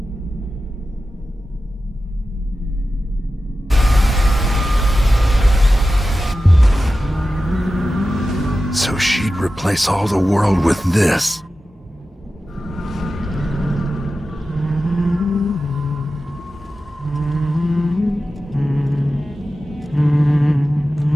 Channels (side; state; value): both; normal; correlation 0.93